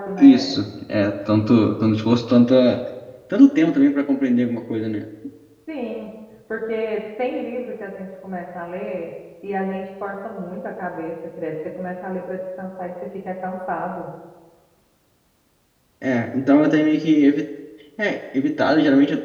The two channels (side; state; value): both; identical; correlation 1.00